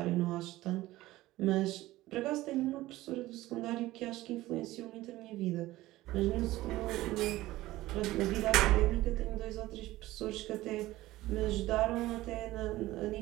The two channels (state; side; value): quieter; left; 17.1 dB